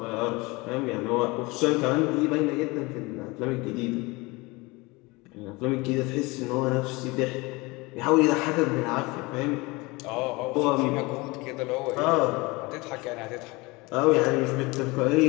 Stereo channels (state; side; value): quieter; right; 24.2 dB